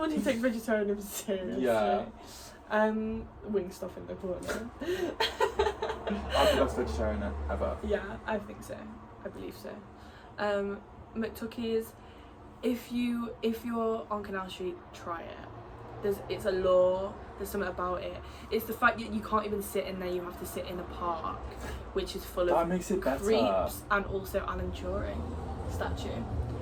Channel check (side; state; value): both; identical; correlation 1.00